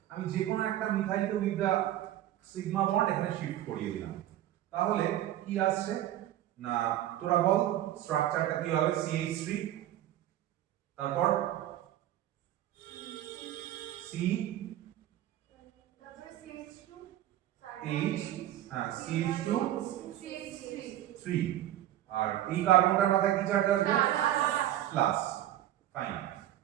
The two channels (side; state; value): left; quieter; 13.0 dB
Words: আমি যে কোনো একটা মিথাইলকে উইথ দা সিগমা বন্ড এখানে শিফট করিয়ে দিলাম, তাহলে কি আসছে না, তোরা বল স্ট্রাকচারটা কি হবে? CH3, তারপর C, H, CH2, 3, আর এই কার্বনটার মাথায় কি চার্জ আসবে? প্লাস। ফাইন।